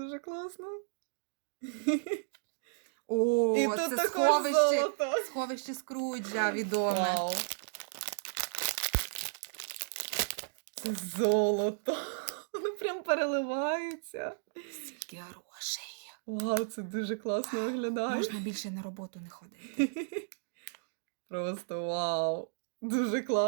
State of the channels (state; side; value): silent; left; digital silence